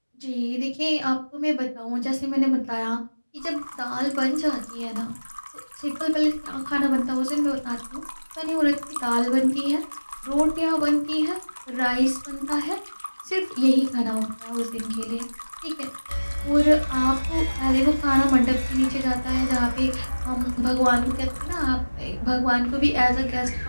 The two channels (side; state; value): both; inverted; correlation -1.00